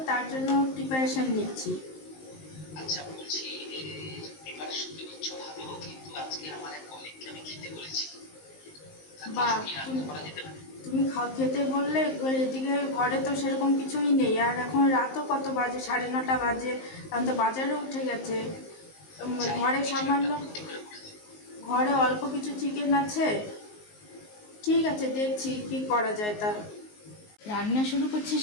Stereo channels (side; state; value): right; late; 19 ms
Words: তার জন্য প্রিপারেশন নিচ্ছি। আচ্ছা, বলছি প্রিপারেশন তো নিচ্ছ ভালো, কিন্তু আজকে আমার এক কলিগকে আমি খেতে বলেছি। তার বা কিছু কি রান্না তুমি করা যেতে পারে? তুমি খেতে বললে, এদিকে ঘরে তো সেরকম কিছুই নেই, আর এখন রাতও কত বাজে, 9:30 বাজে, এখন তো বাজারে উঠে গেছে। যাই হোক, ঘরে কিছু একটা সামান্য, বুদ্ধি করে বলে দাও। ঘরে অল্প কিছু চিকেন আছে। ঠিক আছে, দেখছি কি করা যায় তা। রান্না শুরু করছি